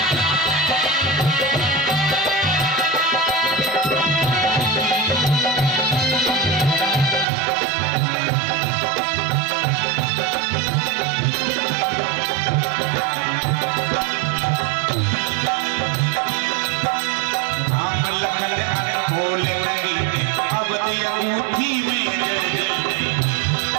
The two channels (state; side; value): drops out; left; at 7.2 s